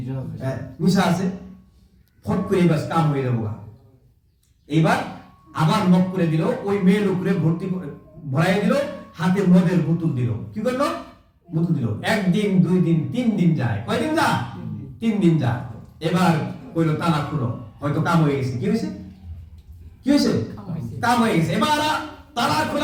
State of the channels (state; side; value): identical; both; correlation 1.00